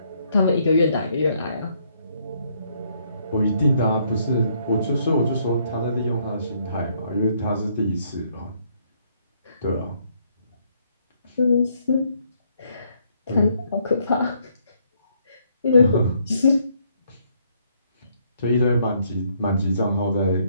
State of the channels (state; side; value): inverted; both; correlation -0.70